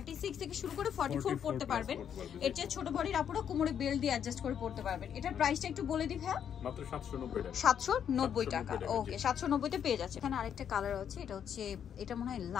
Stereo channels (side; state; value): right; quieter; 8.6 dB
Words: থেকে শুরু করে 44 পড়তে পারবেন। এর চেয়ে ছোট বডির আপুরা কোমরে বেল্ট দিয়ে অ্যাডজাস্ট করে পড়তে পারবেন। এটার প্রাইসটা একটু বলে দিই ভাইয়া। মাত্র 790 টাকা। ওকে, 790 তে পেয়ে যাচ্ছে। এখানে আরেকটা কালার আছে, এটা হচ্ছে, এটা মনে হয়